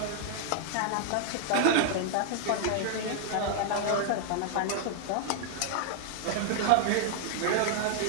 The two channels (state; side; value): different; both; correlation -0.01